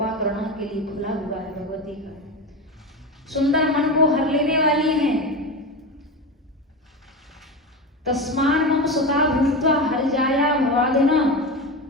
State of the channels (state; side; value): normal; both; correlation 0.22